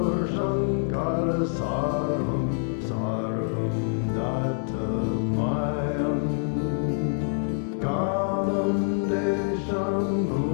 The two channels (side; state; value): right; silent; 60 dB below the other